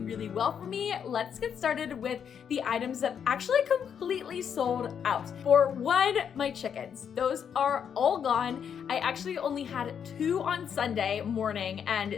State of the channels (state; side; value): quieter; right; 7.8 dB